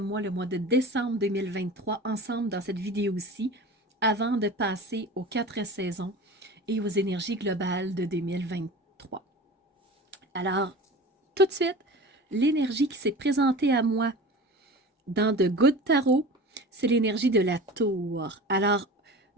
le mois de décembre 2023, ensemble dans cette vidéo-ci, avant de passer aux 4 saisons et aux énergies globales de 2023. Alors, tout de suite, l'énergie qui s'est présentée à moi dans The Good Tarot, c'est l'énergie de la tour. Alors,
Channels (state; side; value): normal; both; correlation 0.35